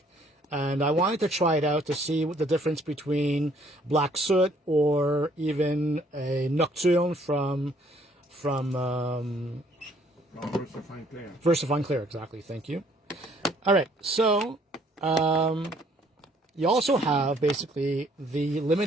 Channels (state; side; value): normal; both; correlation 0.63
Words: And I wanted to try it out to see what the difference between Black Soot or even a Nocturne from Versafine Clear. Versafine Clear, exactly. Thank you. All right, so you also have basically the